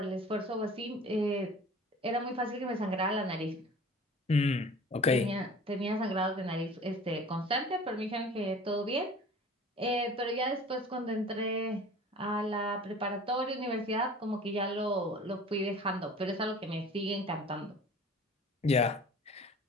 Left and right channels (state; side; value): normal; both; correlation 0.43